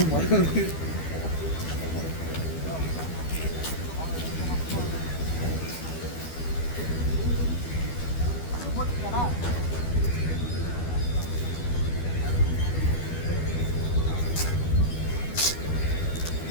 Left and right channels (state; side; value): late; right; 12 ms